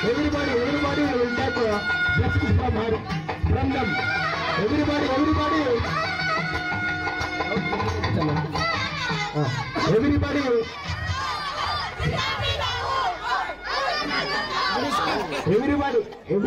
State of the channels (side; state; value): both; identical; correlation 1.00